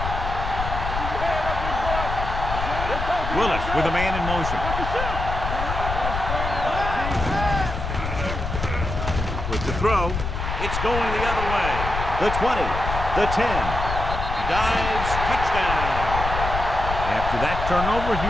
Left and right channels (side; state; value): left; noise; rumble, 4 dB below the sound